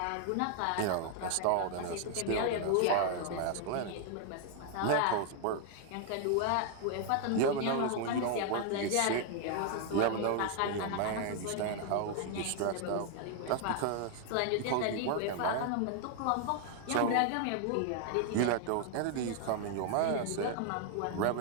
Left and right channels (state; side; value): different; both; correlation 0.00